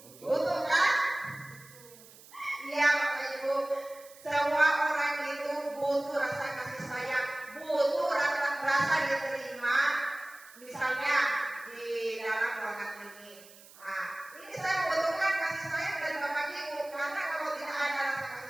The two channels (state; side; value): noise; right; hiss, 21 dB below the sound